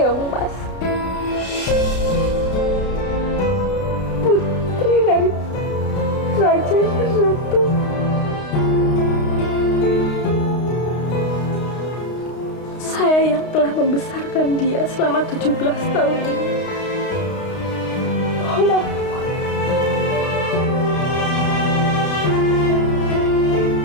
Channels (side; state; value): right; late; 32 ms